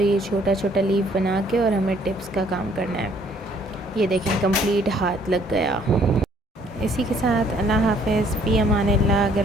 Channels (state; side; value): normal; both; correlation 0.62